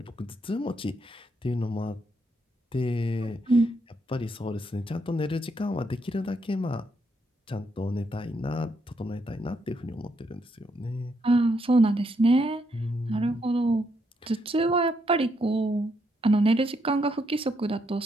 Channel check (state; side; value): normal; both; correlation 0.77